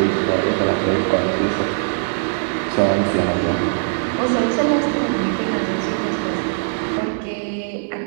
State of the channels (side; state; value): left; silent; 65 dB below the other